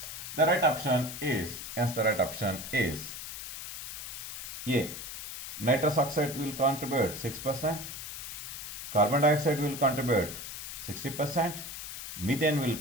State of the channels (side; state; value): left; noise; hiss, 8 dB below the sound